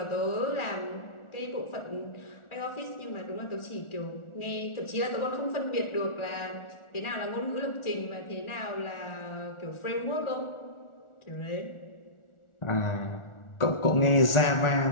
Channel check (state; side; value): late; right; 1.4 ms